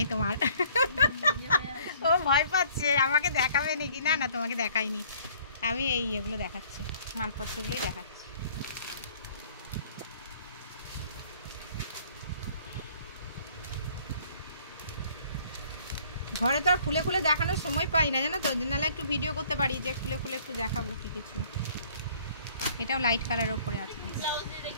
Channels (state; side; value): inverted; both; correlation -0.57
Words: তোমার। ও ভয় পাচ্ছে আমাকে দেখাবে নাকি। না না, তোমাকে দেখাইনি, আমি এগুলো দেখাচ্ছি, মালপত্রগুলোই দেখাচ্ছি। ঘরে তো আর খুলে খুলে দেখানোর সময় পাই না, জানো তো, নাহলে একটু ভিডিও করতে পারি যে খুলে খুলে একটু দেখাবো কি কিছু। এটাও লাইট কালারের উপরে আছে,